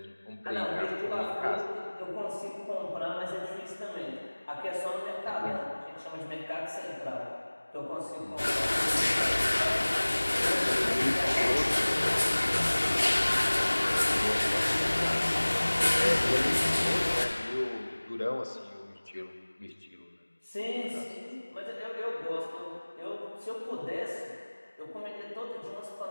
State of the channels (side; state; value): both; inverted; correlation -1.00